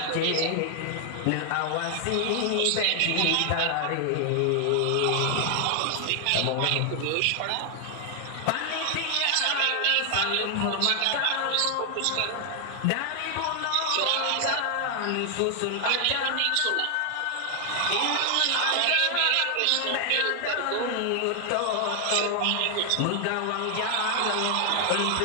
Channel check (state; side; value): different; both; correlation 0.00